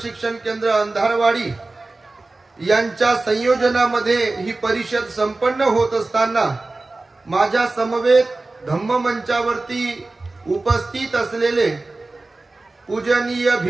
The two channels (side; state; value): left; quieter; 3.2 dB